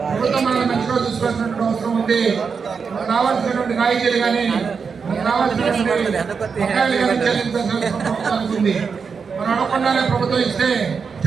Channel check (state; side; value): quieter; left; 5.7 dB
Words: మనల్ని మంచిగా చూసుకోవాల్సినటువంటి అవసరం ఉంది. మనకు రావాల్సినటువంటి రాయితీలు కానీ మనకు రావాల్సినటువంటి చెల్లించాల్సిన ఉంది. మనం అడగకుండానే ప్రభుత్వం ఇస్తే